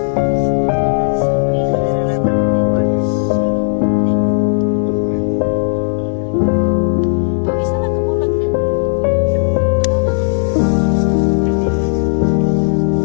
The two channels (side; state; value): right; silent; 64 dB below the other